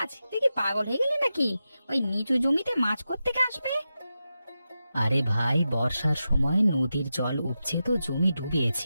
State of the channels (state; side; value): inverted; both; correlation -0.90